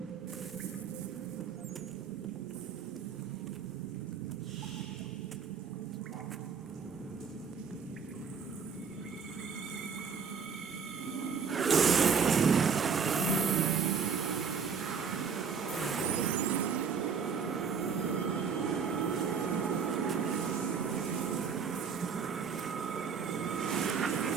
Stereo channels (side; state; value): left; quieter; 6.1 dB